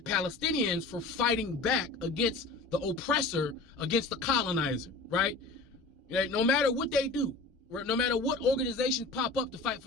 Palestinians for fighting back against the oppressor, against the colonizer, right? No matter what they do, no matter what organizations pop up to fight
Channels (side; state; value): right; quieter; 3.6 dB